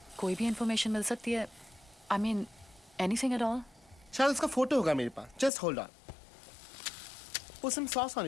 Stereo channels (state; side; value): drops out; right; at 5.5 s